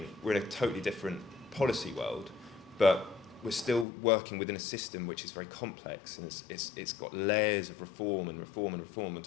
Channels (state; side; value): drops out; right; at 3.9 s